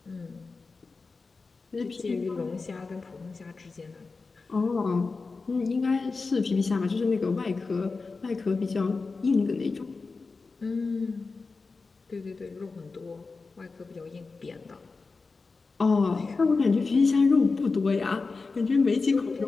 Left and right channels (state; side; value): quieter; right; 4.2 dB